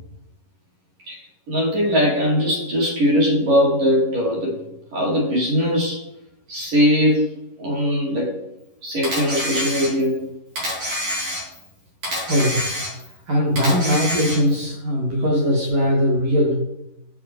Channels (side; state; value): left; late; 11 ms